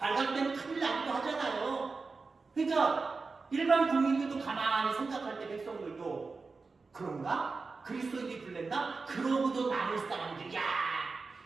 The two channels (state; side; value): quieter; left; 4.2 dB